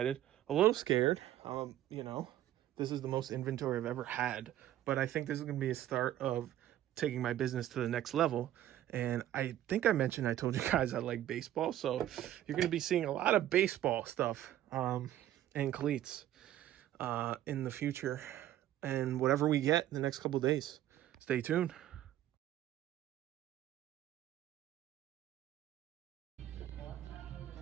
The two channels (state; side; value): quieter; left; 12.8 dB